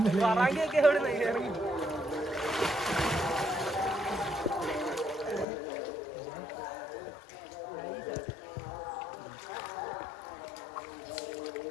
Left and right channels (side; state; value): right; drops out; at 5.5 s